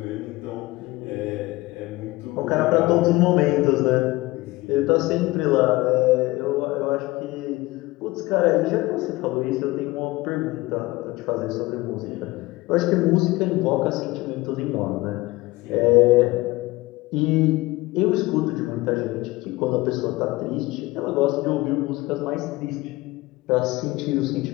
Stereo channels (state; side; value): quieter; right; 20.5 dB